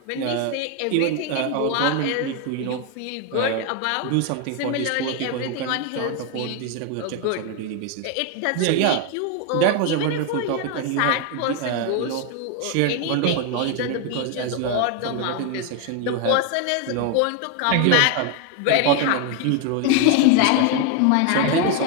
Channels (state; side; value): different; both; correlation 0.01